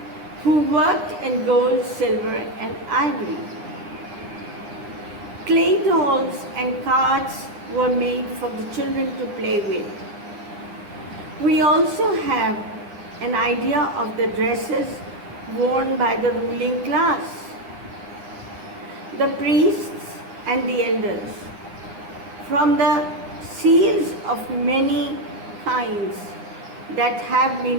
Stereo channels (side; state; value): left; late; 9.8 ms